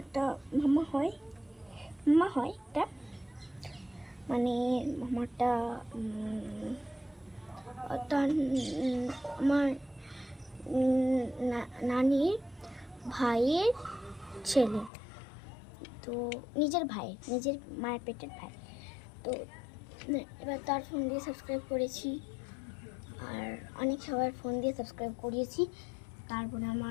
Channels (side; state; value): right; drops out; at 14.9 s